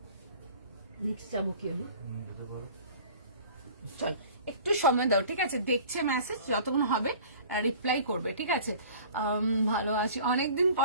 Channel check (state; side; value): inverted; both; correlation -0.45